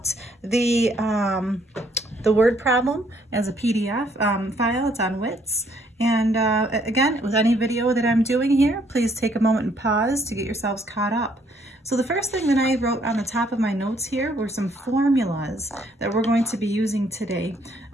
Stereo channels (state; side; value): normal; both; correlation 0.67